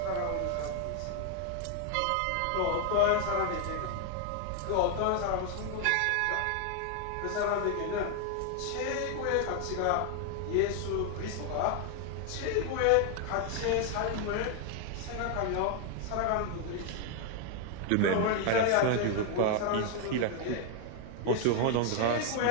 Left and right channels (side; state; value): both; different; correlation 0.00